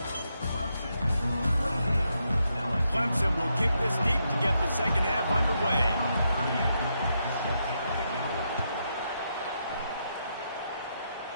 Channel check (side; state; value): both; inverted; correlation -0.81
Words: Clemson will kick this deep to get the second half underway.